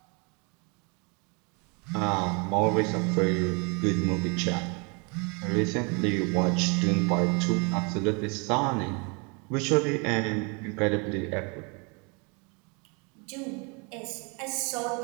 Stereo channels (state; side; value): quieter; left; 32.2 dB